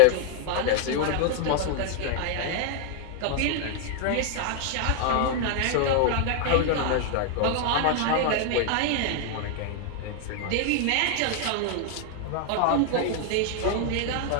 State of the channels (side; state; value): both; different; correlation 0.00